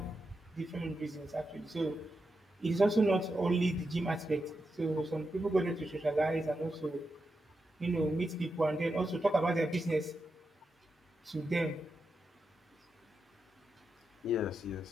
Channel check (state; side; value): normal; both; correlation 0.87